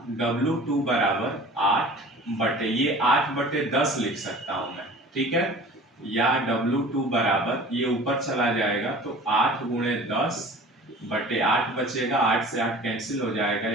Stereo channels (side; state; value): both; normal; correlation 0.43